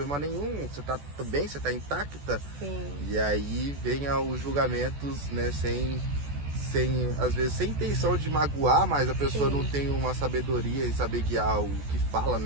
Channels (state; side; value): late; left; 14 ms